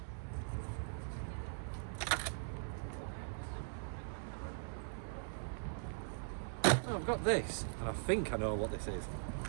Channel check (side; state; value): left; silent; 50 dB below the other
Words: Oh, I've got this, and I think I know what this is.